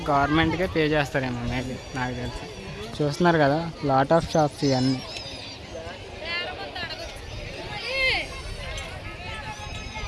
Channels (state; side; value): identical; both; correlation 1.00